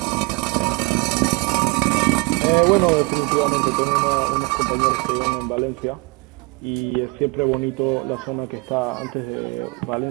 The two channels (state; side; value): quieter; left; 28.1 dB